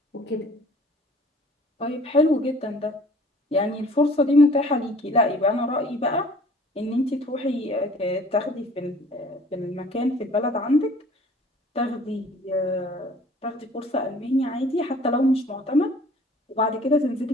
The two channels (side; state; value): both; normal; correlation 0.51